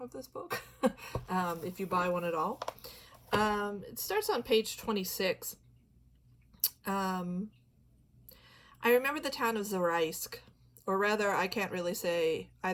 this book, if you buy one at all. It starts on page 26. I remember the town of Zaraisk, or rather, I can't really say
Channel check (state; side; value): identical; both; correlation 1.00